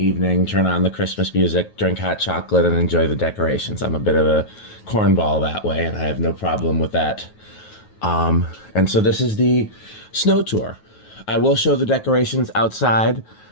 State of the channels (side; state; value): right; late; 9.3 ms